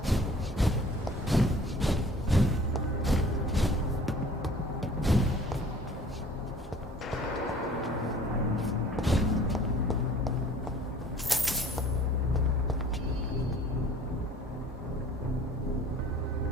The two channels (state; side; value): normal; both; correlation 0.50